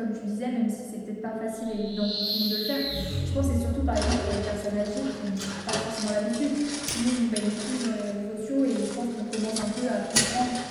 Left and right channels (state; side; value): identical; both; correlation 1.00